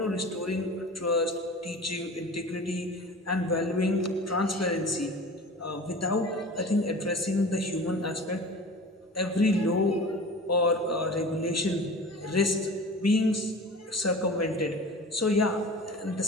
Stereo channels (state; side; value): normal; both; correlation 0.38